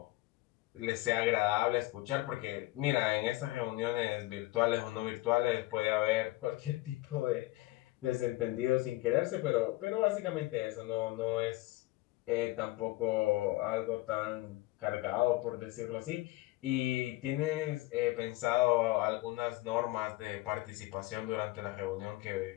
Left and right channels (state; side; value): quieter; right; 19.1 dB